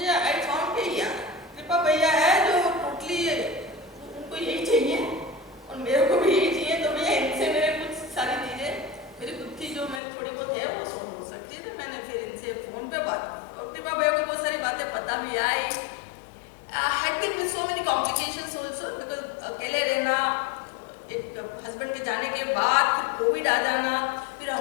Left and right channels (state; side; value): drops out; right; at 10.0 s